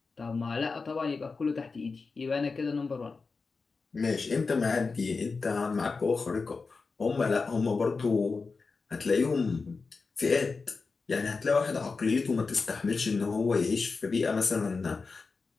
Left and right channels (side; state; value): right; quieter; 4.4 dB